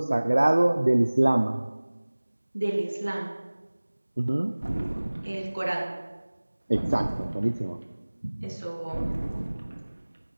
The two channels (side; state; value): both; inverted; correlation -1.00